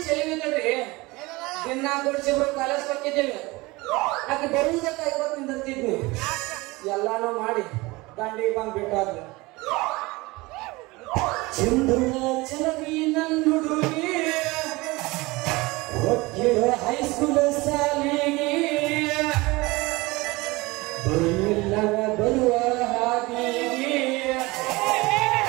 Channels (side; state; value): left; quieter; 22.5 dB